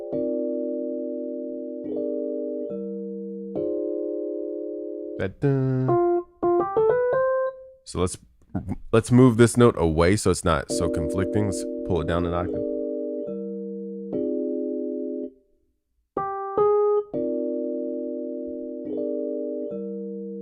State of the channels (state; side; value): identical; both; correlation 1.00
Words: So let's move this note away so it's not so conflicting. Let's pull it down an octave.